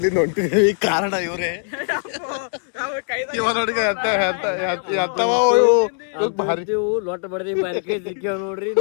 ಹೊಂಟಿದ್ವಿ. ಕಾರಣ ಇವ್ರೆ ಇವ ನೋಡಿ ಲೊಟ್ಟ ಬಡ್ದಿ ಬಾರಿಕೆ ಸಿಕ್ಕೇವ್ ನೋಡ್ರಿ.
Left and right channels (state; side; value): silent; right; 57 dB below the other